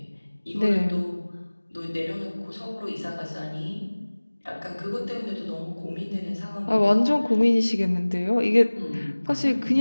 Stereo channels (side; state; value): both; inverted; correlation -1.00